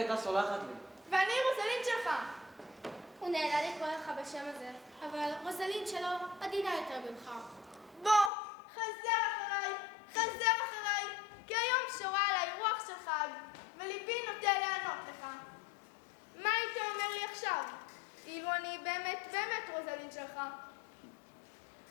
סולחת לי. ואני רוזלין שלך. הוא נהנה לקרוא לך בשם הזה, אבל רוזלין שלו עדינה יותר ממך. בוא, חזר אחריי, כי היום שורה עליי רוח של חג, וליבי נוטה לענות לך. מה היית אומר לי עכשיו, אילו אני באמת רוזלין שלך?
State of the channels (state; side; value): drops out; right; at 8.3 s